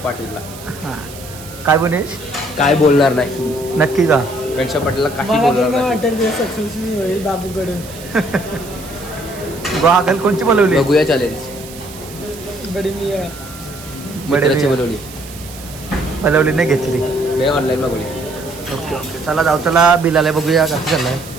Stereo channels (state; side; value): noise; right; hiss, 16 dB below the sound